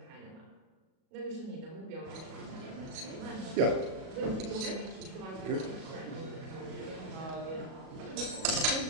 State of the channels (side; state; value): left; late; 37 ms